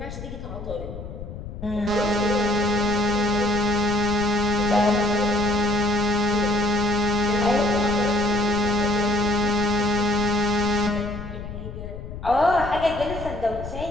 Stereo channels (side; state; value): left; noise; rumble, 10 dB below the sound